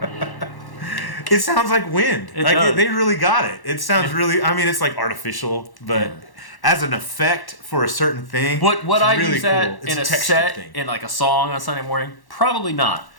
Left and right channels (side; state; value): right; late; 1.1 ms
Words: It sounds like wind. It does. They really got it. It sounds really. I mean, it's like artificial, but as an effect for a certain thing. Would I really use that cool. in a texture set thing. in like a song on Sunday morning? Probably not.